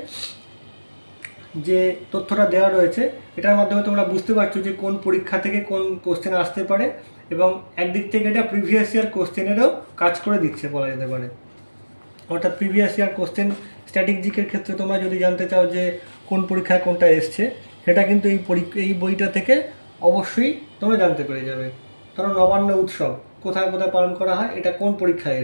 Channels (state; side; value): inverted; both; correlation -1.00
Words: যে তথ্যটা দেওয়া রয়েছে এটার মাধ্যমে তোমরা বুঝতে পারছো যে কোন পরীক্ষা থেকে কোন কোশ্চেন আসতে পারে এবং একদিক থেকে এটা প্রিভিয়াস ইয়ার কোশ্চেনেরও কাজ করে দিচ্ছে বলা যেতে পারে। অর্থাৎ প্রিভিয়াস ইয়ার কোশ্চেন স্ট্র্যাটেজিকের ক্ষেত্রে তোমরা যদি জানতে চাও যে কোন পরীক্ষায় কোনটা এসছে সেটা কিন্তু এই বইটা থেকে অবশ্যই তোমরা জানতে পেরে যাবে। ধরো নবান্ন উৎসব কোথায় কোথায় পালন করা হয়, এটা কোন পরীক্ষায়